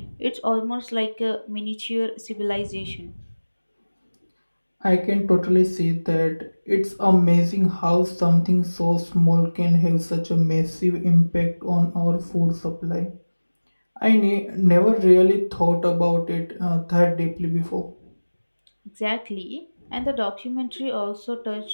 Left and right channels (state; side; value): inverted; both; correlation -1.00